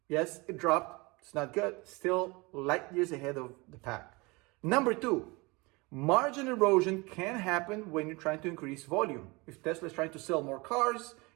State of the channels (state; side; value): quieter; left; 25.5 dB